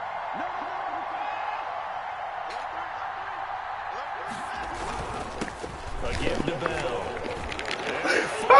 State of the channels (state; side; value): identical; both; correlation 1.00